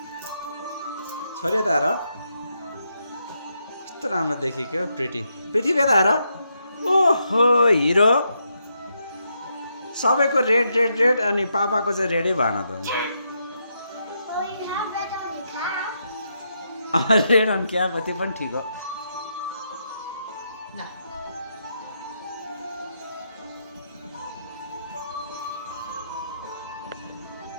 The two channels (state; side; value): inverted; both; correlation -0.81